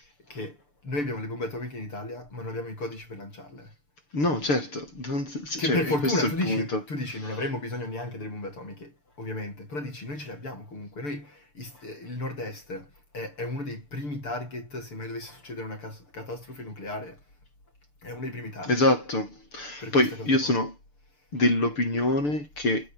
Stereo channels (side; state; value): right; late; 6.8 ms